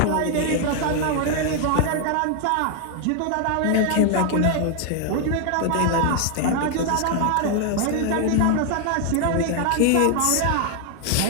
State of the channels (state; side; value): different; both; correlation 0.00